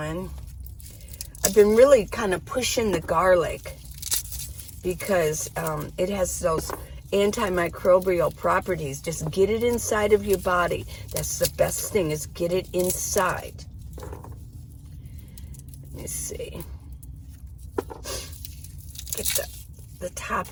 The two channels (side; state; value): both; identical; correlation 1.00